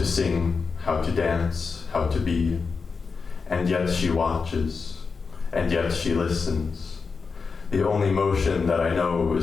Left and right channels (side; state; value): right; quieter; 4.9 dB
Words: sing, how to dance, how to be. And yet she watches, and yet she listens. The only motion that I know